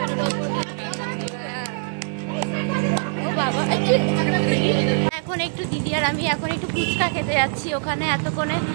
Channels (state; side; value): silent; left; digital silence